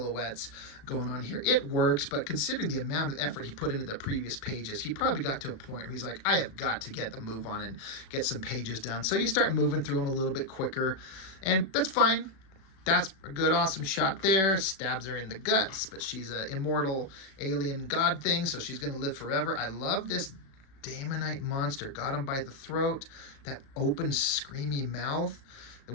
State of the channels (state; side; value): late; right; 36 ms